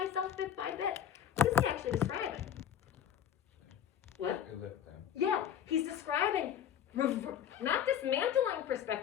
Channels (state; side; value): quieter; right; 9.3 dB